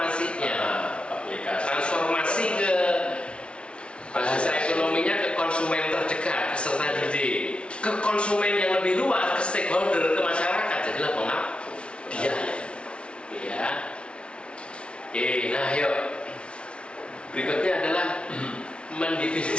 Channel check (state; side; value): late; right; 0.059 ms